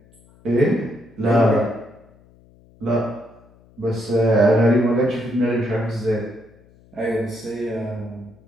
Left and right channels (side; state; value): left; noise; hum, 28 dB below the sound